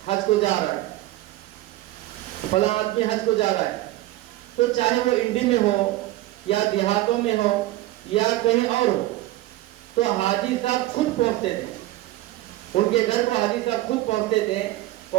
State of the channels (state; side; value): quieter; left; 16.7 dB